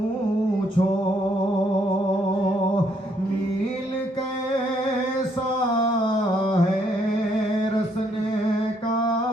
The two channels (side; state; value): both; normal; correlation 0.70